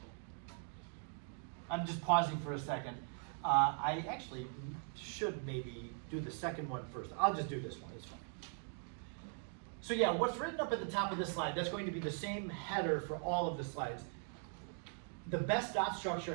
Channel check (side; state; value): left; silent; 51 dB below the other